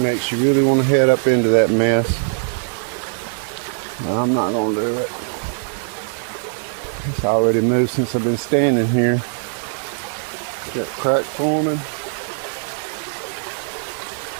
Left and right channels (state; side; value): silent; left; digital silence